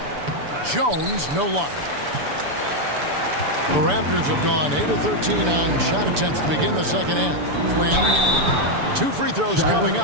Jones, no luck. The Raptors have gone 8 of 13 on shot attempts to begin the second half. Flynn, 2 free throws coming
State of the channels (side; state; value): left; late; 6.9 ms